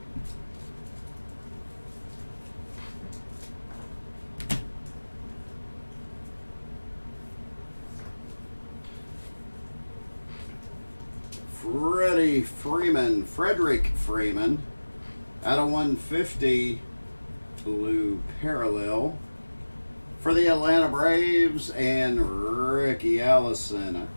Frederick Freeman out of 150 blue parallel for the Atlanta Braves, and Ricky Allison,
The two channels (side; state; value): both; inverted; correlation -1.00